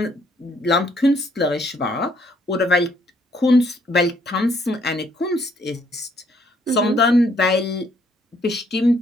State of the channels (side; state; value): both; normal; correlation 0.68